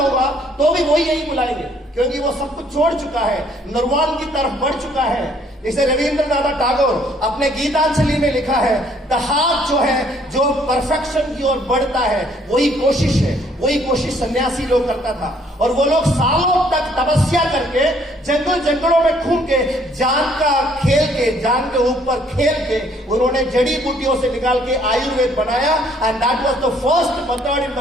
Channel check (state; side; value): normal; both; correlation 0.63